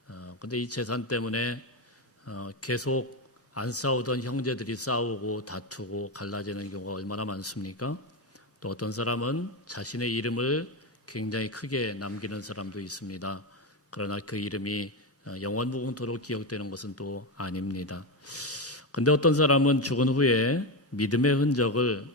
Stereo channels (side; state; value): both; normal; correlation 0.13